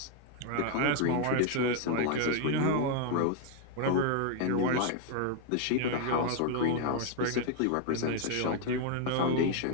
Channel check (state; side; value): different; both; correlation 0.00